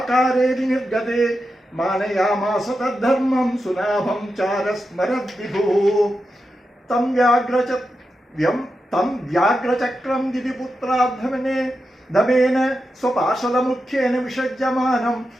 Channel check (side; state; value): both; normal; correlation 0.89